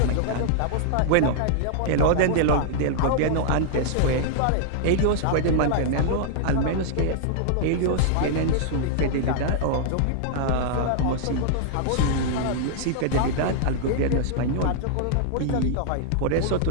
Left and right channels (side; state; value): both; different; correlation -0.01